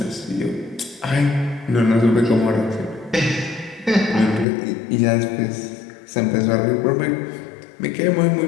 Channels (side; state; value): right; drops out; at 4.5 s